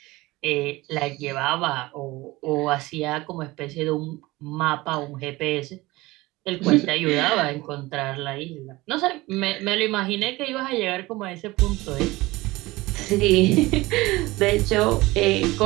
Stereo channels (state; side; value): quieter; left; 20.3 dB